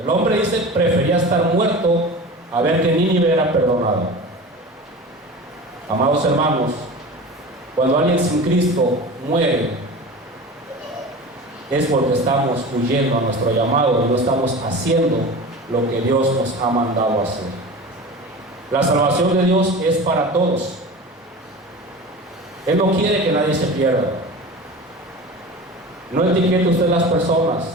hombre dice, prefería estar muerto a ver que Nínive era perdonado. Amados hermanos, cuando alguien sin Cristo muere, es porque estamos huyendo a nuestro llamado y no estamos haciendo lo que Dios nos ha mandado hacer. La salvación de Dios es para todos. Él no quiere que nadie se pierda. No etiquete usted las personas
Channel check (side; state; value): both; normal; correlation 0.33